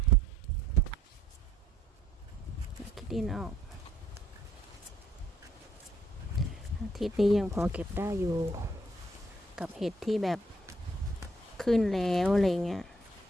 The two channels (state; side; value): normal; both; correlation 0.67